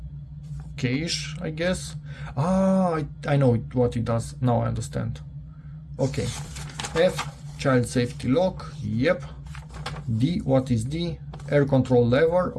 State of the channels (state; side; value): identical; both; correlation 1.00